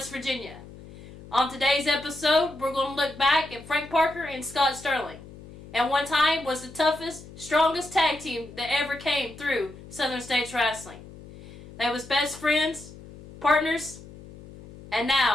Virginia. On today's episode, we're going to look back at Frank Parker and Scott Sterling. At one time was the toughest, strongest tag team that ever came through Southern States Wrestling. They was best friends, partners, and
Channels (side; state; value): left; noise; hum, 18 dB below the sound